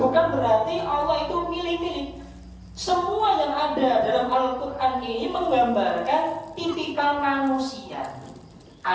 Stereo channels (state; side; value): identical; both; correlation 1.00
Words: bukan berarti Allah itu milih-milih. Semua yang ada dalam Al-Quran ini menggambarkan tipikal manusia.